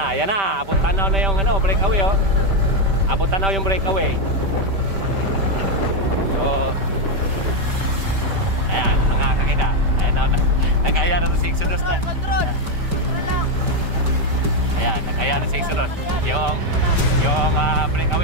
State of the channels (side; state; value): left; late; 5.1 ms